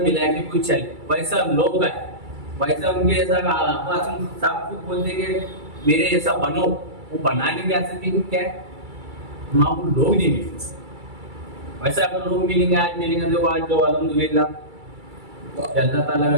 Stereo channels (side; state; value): left; late; 2.3 ms